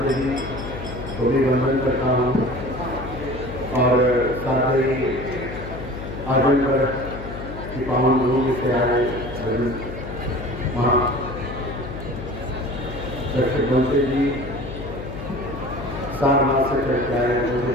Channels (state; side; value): noise; left; hum, 10 dB below the sound